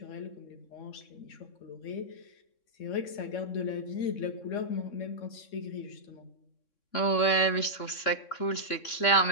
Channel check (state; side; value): late; right; 3.6 ms